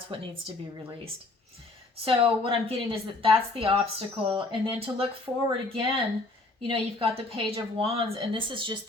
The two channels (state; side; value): quieter; right; 3.1 dB